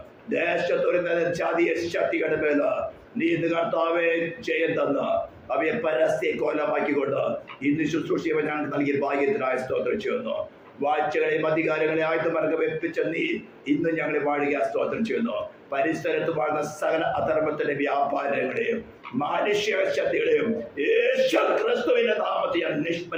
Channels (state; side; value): identical; both; correlation 1.00